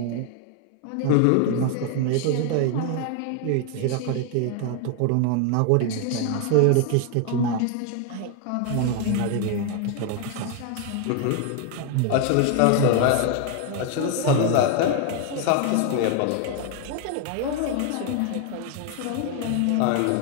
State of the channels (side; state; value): both; different; correlation 0.01